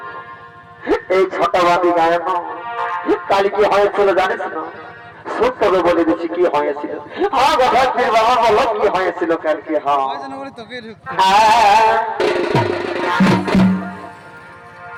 এই ছটাবাদী গায়ন কাল কি হয়েছিল জানিস না শুন তবে বলে দিচ্ছি কি হয়েছিল হ্যাঁ ঢেকচির বাবা বলো কি হয়েছিল কালকে হ্যাঁ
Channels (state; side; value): identical; both; correlation 1.00